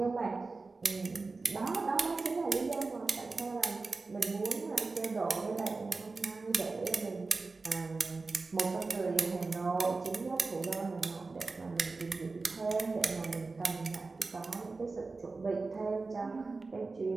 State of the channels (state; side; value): quieter; left; 3.9 dB